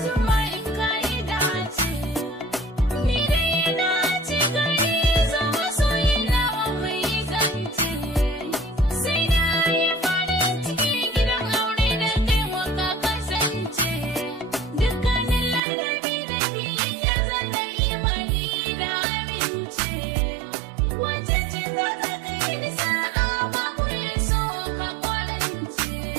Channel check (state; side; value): drops out; left; at 15.6 s